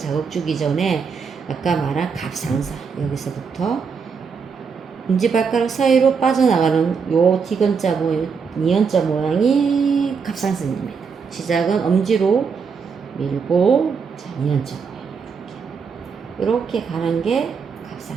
주기 전에 아까 말한 갑상선 여기서부터 엄지발가락 사이로 빠져나가는 요 디귿자 모양, 니은자 모양이 갑상선입니다. 시작은 엄지로 밀고 자, 니은자 모양 이렇게 가는 게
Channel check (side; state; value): left; quieter; 5.8 dB